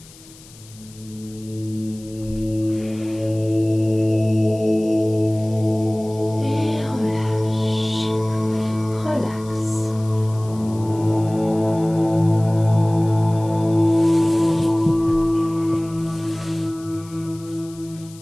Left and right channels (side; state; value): left; noise; hiss, 22 dB below the sound